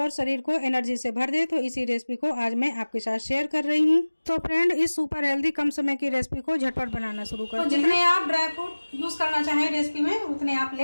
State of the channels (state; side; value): inverted; both; correlation -1.00